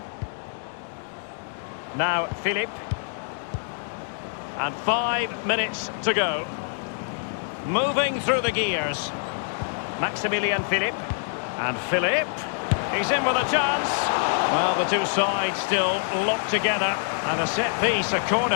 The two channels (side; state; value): right; silent; digital silence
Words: Now Philippe. And 5 minutes to go. Moving through the gears. Maximilian Philippe. And Philippe. He's in with a chance. Well, the two sides still locked together. And a set piece, a